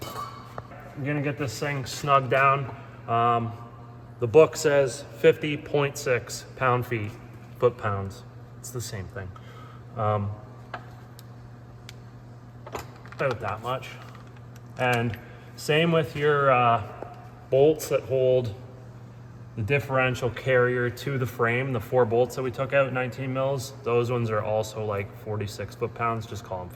I'm gonna get this thing snug down. The book says 50.6 pound-feet, foot-pounds. It's the same thing. About that much. And same with your bolts that hold the differential carrier to the frame. The 4 bolts that we took out, 19 mils, those ones are also like 46 foot-pounds. Just call them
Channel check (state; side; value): identical; both; correlation 1.00